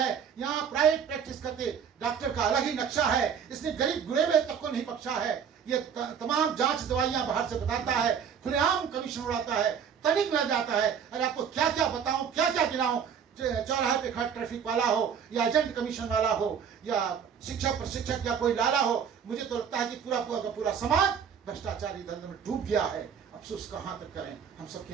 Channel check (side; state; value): left; quieter; 7.5 dB